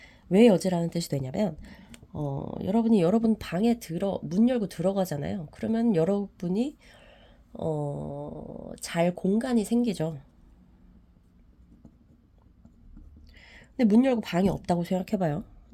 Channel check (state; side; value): identical; both; correlation 1.00